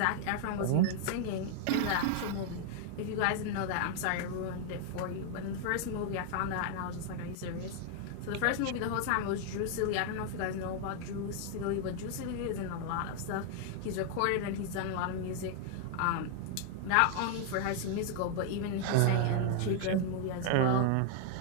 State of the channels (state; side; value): different; both; correlation 0.00